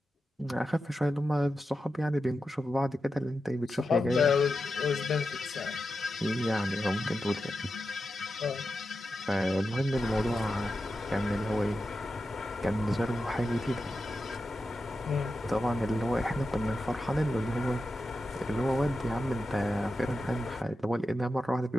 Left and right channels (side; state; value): both; normal; correlation 0.90